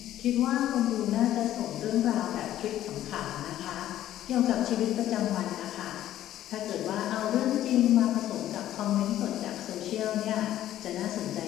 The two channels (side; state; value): right; quieter; 12.7 dB